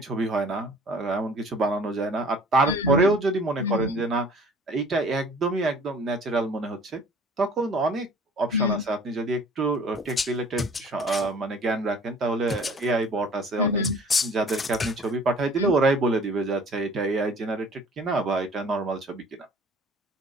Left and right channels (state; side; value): normal; both; correlation 0.50